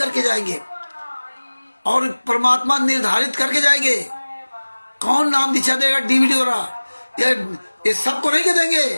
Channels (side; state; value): both; inverted; correlation -1.00